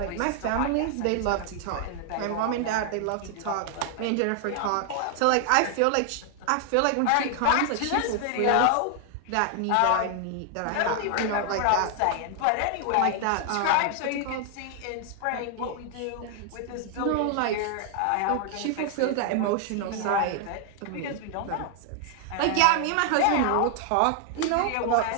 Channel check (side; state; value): both; different; correlation 0.00